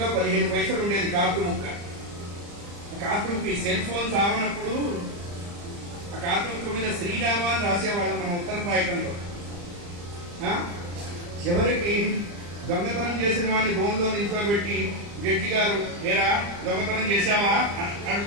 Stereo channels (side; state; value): left; late; 35 ms